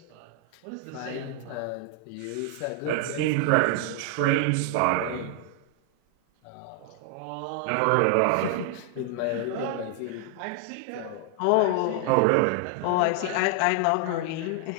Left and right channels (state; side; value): different; both; correlation 0.00